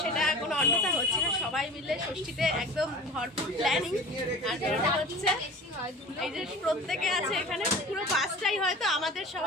সেটা কোনো অন্যথা হচ্ছে না। সবাই মিলে ষষ্ঠীতে একদম ভরপুর প্ল্যানিং, আর এটা হচ্ছে এই যে প্রত্যেকে আছে এখানে, পুরো বাসটাই হয়তো আমাদের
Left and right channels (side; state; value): both; normal; correlation 0.38